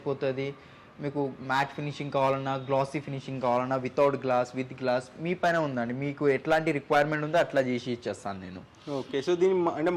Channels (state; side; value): identical; both; correlation 1.00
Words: మీకు మ్యాట్ ఫినిషింగ్ కావాలన్నా, గ్లాసీ ఫినిషింగ్ కావాలన్నా, వితౌట్ గ్లాస్, విత్ గ్లాస్ మీ పైన ఉందండి. మీకు ఎట్లాంటి రిక్వైర్మెంట్ ఉందో అట్లా చేసి ఇచ్చేస్తాను నేను. ఓకే, సో దీని అంటే